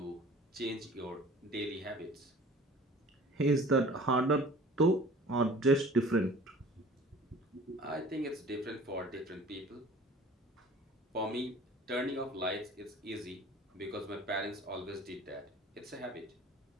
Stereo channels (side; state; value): both; normal; correlation 0.46